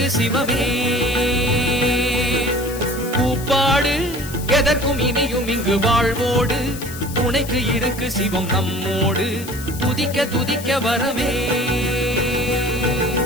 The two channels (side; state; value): left; noise; hiss, 13 dB below the sound